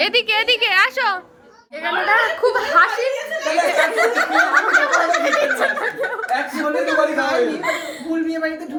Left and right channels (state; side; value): identical; both; correlation 1.00